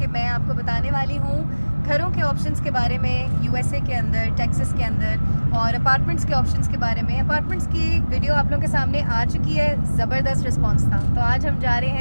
मैं आपको बताने वाली हूँ घरों के ऑप्शंस के बारे में यूएसए के अंदर, टेक्सास के अंदर, और अपार्टमेंट्स के ऑप्शंस के बारे में। अपार्टमेंट्स की वीडियो आप लोगों के सामने आ चुकी है, ज़बरदस्त रिस्पांस था। तो आज हम जा रहे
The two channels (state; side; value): inverted; both; correlation -1.00